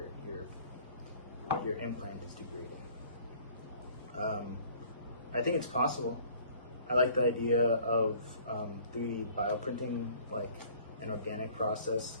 implant is degrading. I think it's possible. I like the idea of 3D bioprinting, like an organic process,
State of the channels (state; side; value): inverted; both; correlation -0.53